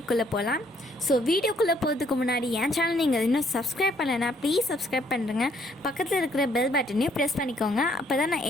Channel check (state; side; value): normal; both; correlation 0.67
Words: போகலாம். ஸோ வீடியோக்குள்ளே போகிறதுக்கு முன்னாடி என் சேனல் நீங்கள் இன்னும் சப்ஸ்கிரைப் பண்ணலைன்னா ப்ளீஸ் சப்ஸ்கிரைப் பண்ணுறேங்க. பக்கத்தில் இருக்கிற பெல் பட்டனையும் ப்ரெஸ் பண்ணிக்கோங்க. அப்போ தான் நான்